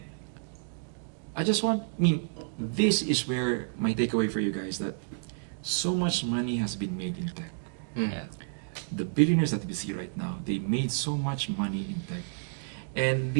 I just want, this is where my takeaway for you guys, that so much money has been made in tech. Yeah. The billionaires that we see right now, they made so much money in tech. And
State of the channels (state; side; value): silent; left; digital silence